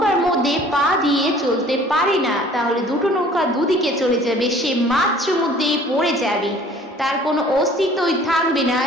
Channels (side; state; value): both; normal; correlation 0.52